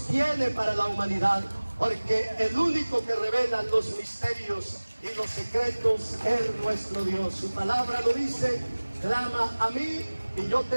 tiene para la humanidad, porque el único que revela los misterios y los secretos es nuestro Dios. Su palabra lo dice: clama a mí y yo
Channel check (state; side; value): inverted; both; correlation -1.00